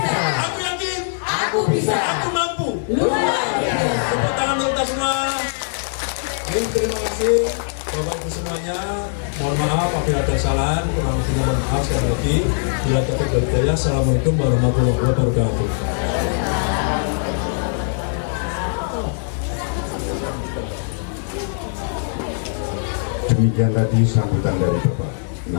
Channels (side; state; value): right; silent; digital silence